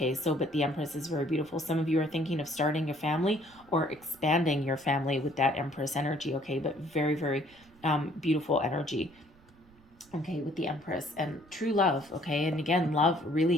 So, but the Empress is very beautiful. Some of you are thinking of starting a family or expanding your family with that Empress energy, okay? But very, very beautiful energy, okay, with the Empress and true love, okay? And again, love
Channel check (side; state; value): right; noise; rumble, 28 dB below the sound